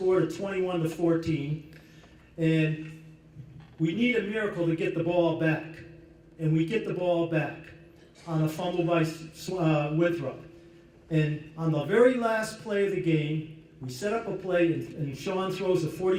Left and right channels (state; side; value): identical; both; correlation 1.00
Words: to 21-14, and we need a miracle to get the ball back. And we get the ball back on a fumble by Winthrop. And on the very last play of the game, we set up a play, and Sean throws a